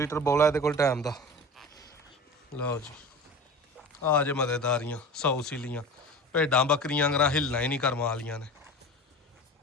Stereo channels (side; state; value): both; normal; correlation 0.34